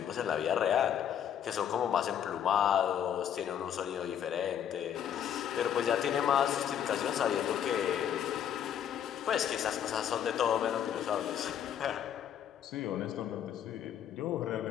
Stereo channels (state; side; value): quieter; right; 9.4 dB